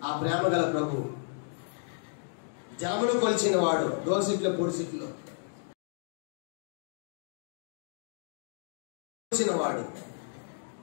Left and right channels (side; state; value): right; silent; digital silence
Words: ఆ ప్రేమ గల ప్రభు జలములు కొలిచిన వాడు, దోసిట్లో పొడిసిట్లో వాడు,